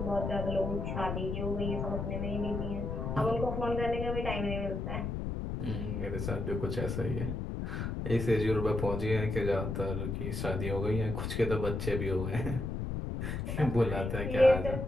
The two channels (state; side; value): noise; left; rumble, 3 dB below the sound